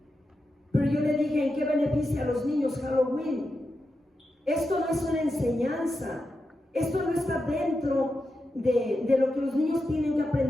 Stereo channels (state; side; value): normal; both; correlation 0.89